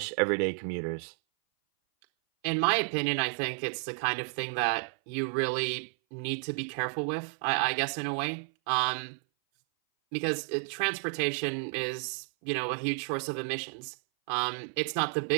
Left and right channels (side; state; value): left; silent; 57 dB below the other